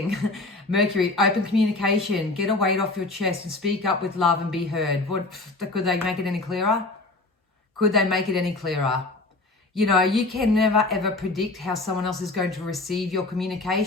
Mercury, open communication, get a weight off your chest and speak up with love and be heard. Could they make it any clearer? Could they make it any clearer? You can never ever predict how someone else is going to receive your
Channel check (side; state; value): right; quieter; 3.1 dB